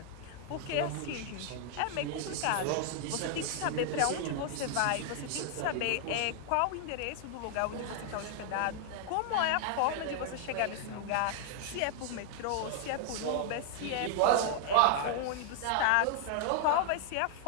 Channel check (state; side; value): different; both; correlation 0.00